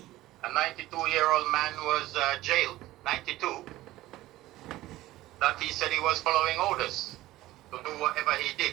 a 92-year-old man was jailed, 92, that he said he was following orders to do whatever he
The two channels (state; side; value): quieter; left; 16.5 dB